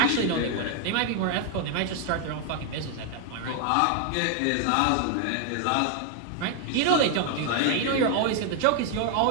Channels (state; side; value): different; both; correlation 0.00